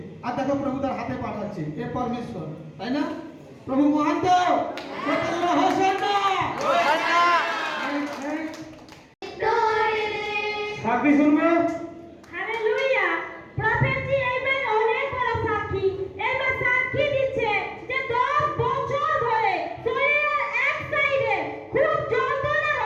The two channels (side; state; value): both; identical; correlation 1.00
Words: আর দেখো প্রভু তার হাতে পাঠাচ্ছে। এ পরমেশ্বর, তাই না? প্রভু মহান তো হোসান্না। সাক্ষী শুনবে। হালেলুয়া। প্রফেসি এই মায়ের অনেক বড় সাক্ষী। এই মা সাক্ষী দিচ্ছে যে 10 বছর ধরে শরীরের এক সাইডে খুব যন্ত্রণা